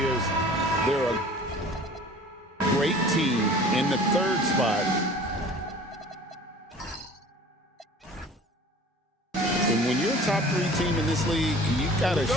They're a great team in the 3rd spot. And when you're a top 3 team in this league, you've got a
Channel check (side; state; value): both; normal; correlation 0.45